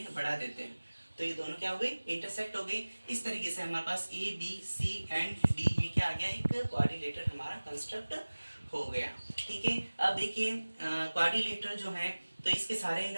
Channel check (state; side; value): inverted; both; correlation -1.00